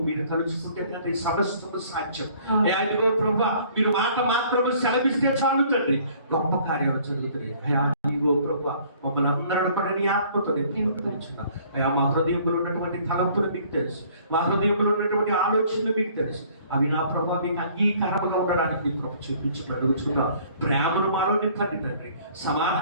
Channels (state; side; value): inverted; both; correlation -0.56